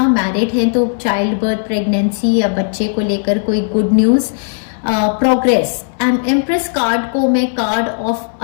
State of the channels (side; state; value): right; silent; digital silence